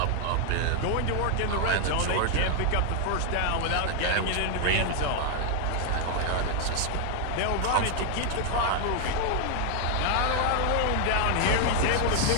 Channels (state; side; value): different; both; correlation 0.00